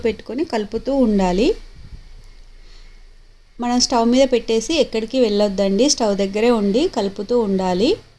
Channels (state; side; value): identical; both; correlation 1.00